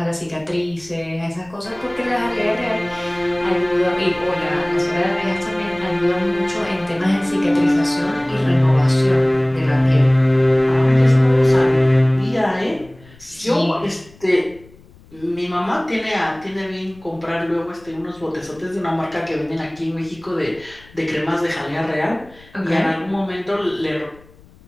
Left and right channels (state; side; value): noise; left; rumble, 25 dB below the sound